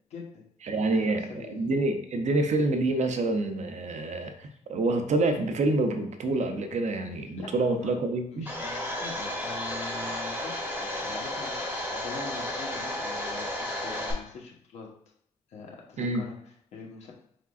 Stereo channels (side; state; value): both; normal; correlation 0.54